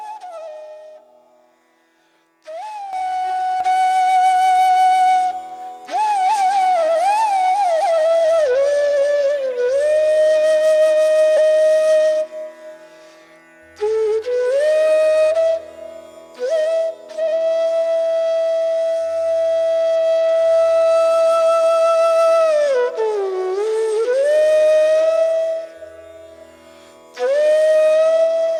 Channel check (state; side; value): identical; both; correlation 1.00